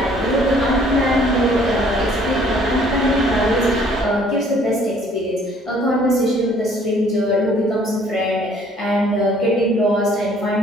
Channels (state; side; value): normal; both; correlation 0.59